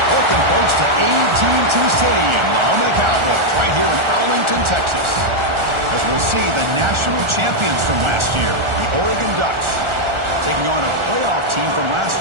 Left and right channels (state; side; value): late; left; 1.4 ms